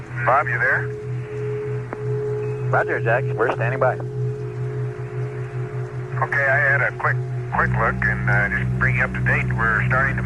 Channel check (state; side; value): identical; both; correlation 1.00